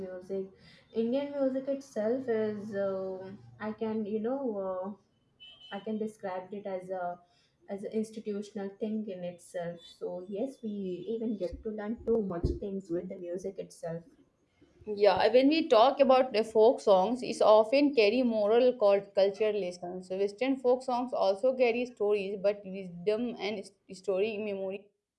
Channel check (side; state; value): both; identical; correlation 1.00